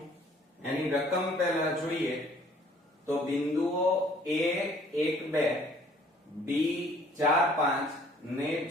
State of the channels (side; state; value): both; normal; correlation 0.57